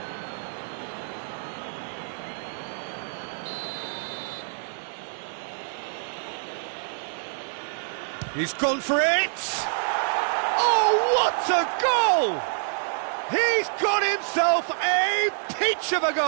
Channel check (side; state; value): left; silent; 60 dB below the other